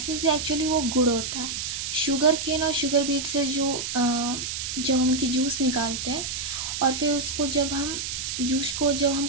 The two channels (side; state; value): right; noise; hiss, 4 dB below the sound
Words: है एक्चुअली वो गुड़ होता है। शुगर केन और शुगर बीट से जब हम उनकी जूस निकालते हैं और फिर उसको जब हम